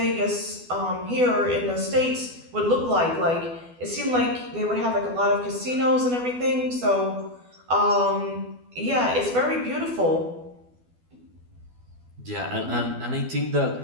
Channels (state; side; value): late; left; 12 ms